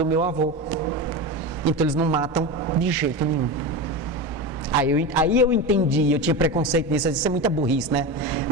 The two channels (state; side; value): normal; both; correlation 0.22